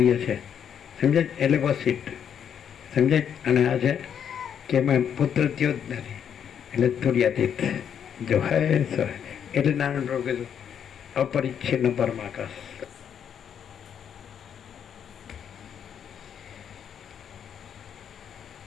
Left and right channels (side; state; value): right; quieter; 8.4 dB